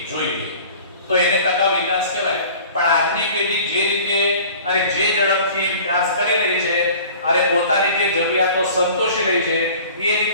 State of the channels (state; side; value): inverted; both; correlation -0.45